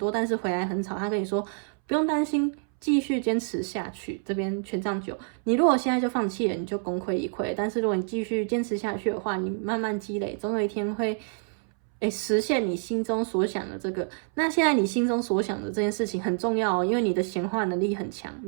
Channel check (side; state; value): left; silent; 60 dB below the other